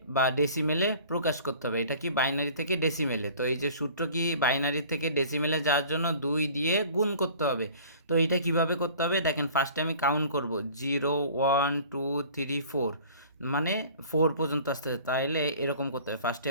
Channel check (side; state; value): both; inverted; correlation -0.47